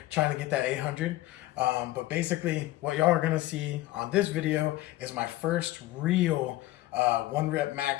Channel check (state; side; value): quieter; right; 16.7 dB